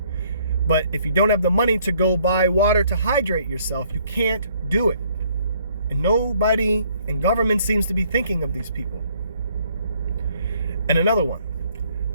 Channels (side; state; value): both; inverted; correlation -0.65